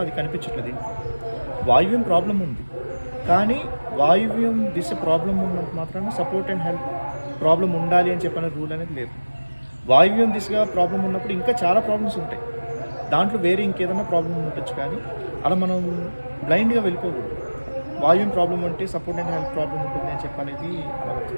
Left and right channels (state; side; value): inverted; both; correlation -1.00